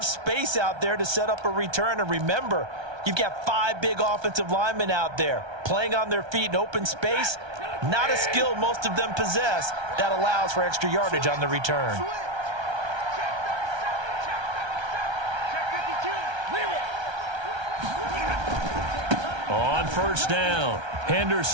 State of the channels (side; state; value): left; late; 1.3 ms